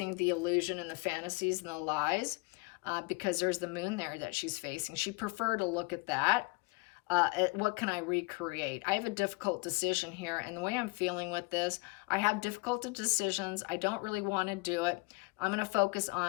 the illusion and the fantasies and the lies, because there's the moon there that she's facing. She'd prefer to look at that. What can I recreate? I have a difficult decision here, and the way I'm feeling with this, I have difficult decisions. I don't really want to do it. I'm going to focus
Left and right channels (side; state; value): right; quieter; 27.4 dB